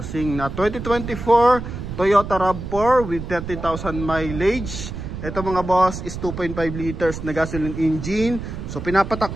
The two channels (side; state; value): right; noise; rumble, 8 dB below the sound